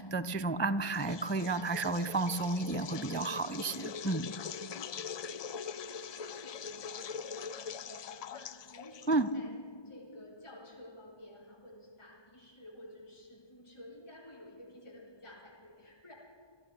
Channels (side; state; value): right; late; 1.2 ms